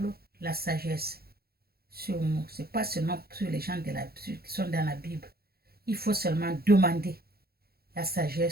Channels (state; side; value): late; left; 0.45 ms